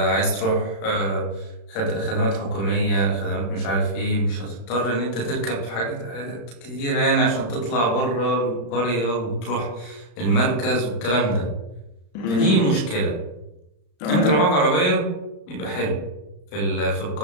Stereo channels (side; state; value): right; late; 34 ms